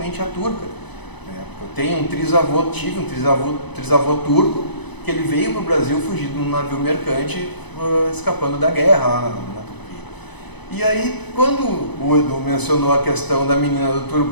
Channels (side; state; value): right; late; 1.0 ms